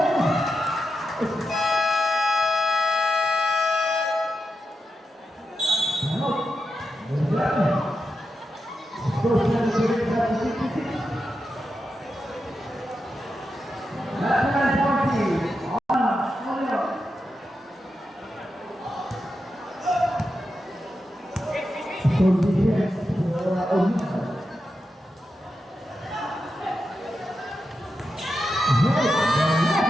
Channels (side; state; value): both; normal; correlation 0.88